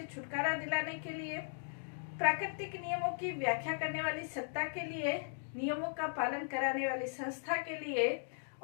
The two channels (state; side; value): silent; right; digital silence